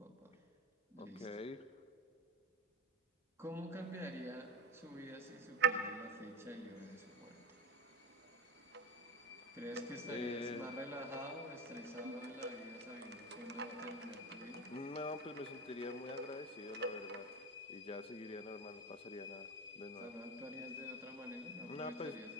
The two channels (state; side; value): normal; both; correlation 0.26